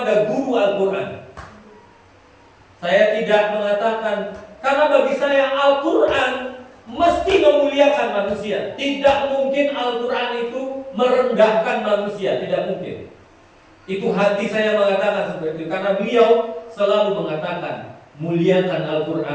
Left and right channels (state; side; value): identical; both; correlation 1.00